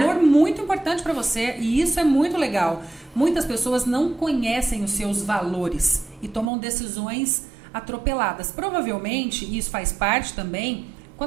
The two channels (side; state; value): left; drops out; at 6.5 s